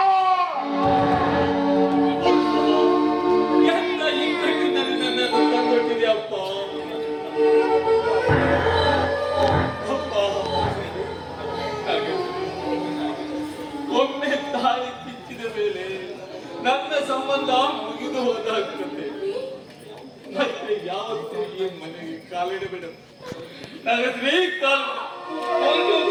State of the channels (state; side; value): identical; both; correlation 1.00